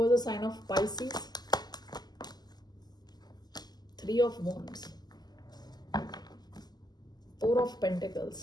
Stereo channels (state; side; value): late; right; 0.20 ms